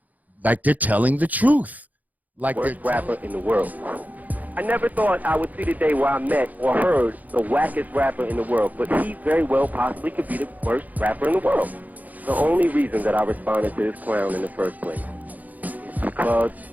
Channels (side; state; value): left; late; 0.080 ms